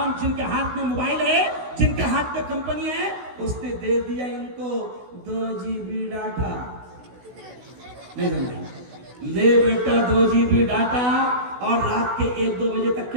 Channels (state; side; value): late; left; 16 ms